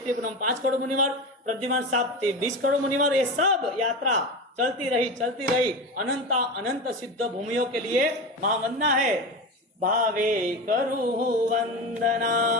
पूनम 5 करोड़ मुनिवर, प्रद्युमान साहब 20 करोड़ मुनिवर, ये सब यात्रा चलती रही अनंत सिद्ध भूमियों के लिए महावंदना है। भावे करू वंदना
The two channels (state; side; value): normal; both; correlation 0.24